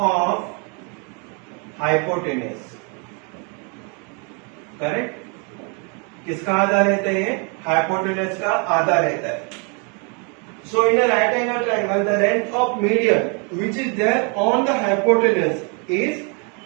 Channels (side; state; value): left; quieter; 35.4 dB